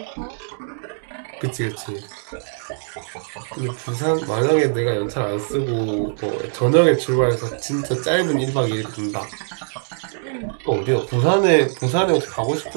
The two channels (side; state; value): left; silent; digital silence